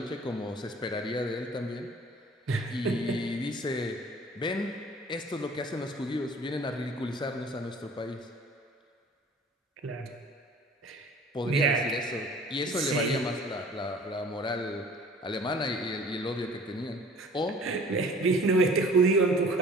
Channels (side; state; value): both; normal; correlation 0.48